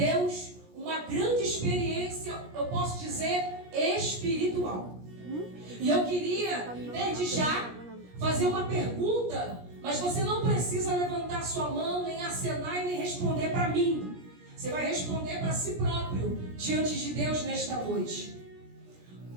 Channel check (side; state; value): left; late; 17 ms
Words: uma grande experiência, eu posso dizer, espiritual. E eu queria, desde já, fazer uma pergunta, mas você não precisa levantar sua mão, nem acenar e nem responder para mim. Você vai responder para si próprio, diante de Deus nesta noite.